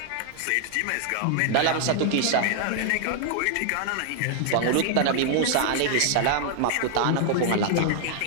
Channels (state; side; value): different; both; correlation 0.00